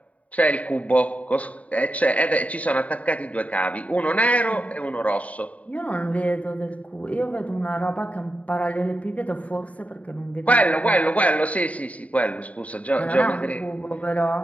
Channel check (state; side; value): late; right; 0.068 ms